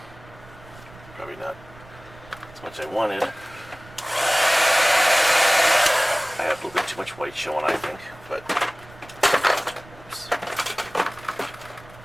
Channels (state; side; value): noise; right; rumble, 21 dB below the sound